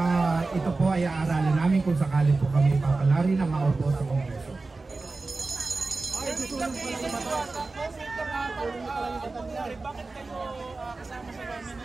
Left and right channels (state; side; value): quieter; left; 3.6 dB